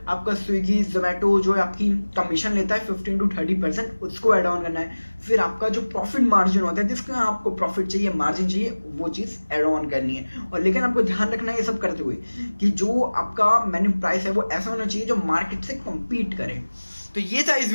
आपका स्विगी, जोमेटो जो आपकी कमीशन लेता है 15 to 30%, उसको ऐड ऑन करना है। फिर आपका जो प्रॉफिट मार्जिन होता है, जिसका आपको प्रॉफिट चाहिए, मार्जिन चाहिए, वो चीज़ ऐड ऑन करनी है। और लेकिन आपको ध्यान रखना है ये सब करते हुए कि जो आपका मेन्यू प्राइस है वो ऐसा होना चाहिए जो मार्केट से कम्पीट करे। तो ये था इस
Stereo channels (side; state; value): both; inverted; correlation -1.00